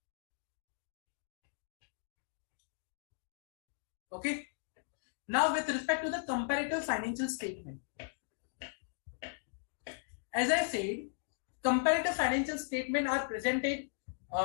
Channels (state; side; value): silent; right; digital silence